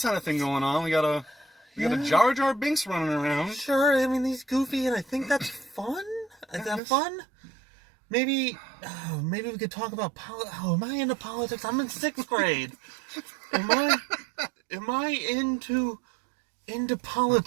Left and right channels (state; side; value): drops out; left; at 6.8 s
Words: thing going on. We got a Jar Jar Binks running around. Sure, I mean, he's goofy, and I think that's fun. Is that fun? Maybe we could talk about am I into politics? I'm in 6th grade. Am I into